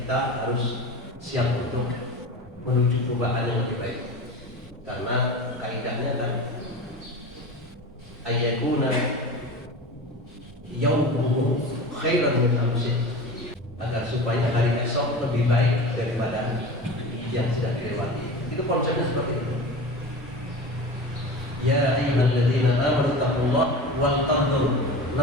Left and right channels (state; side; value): normal; both; correlation 0.31